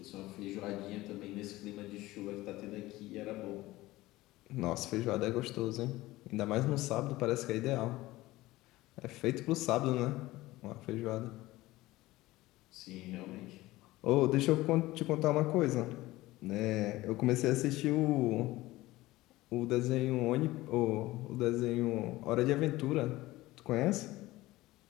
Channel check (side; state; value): right; quieter; 18.2 dB